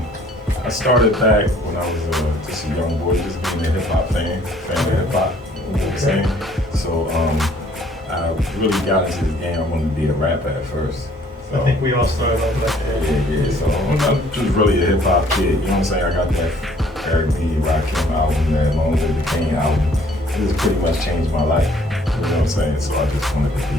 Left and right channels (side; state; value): both; normal; correlation 0.59